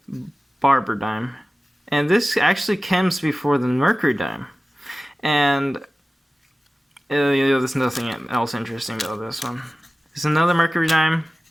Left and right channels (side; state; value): both; normal; correlation 0.97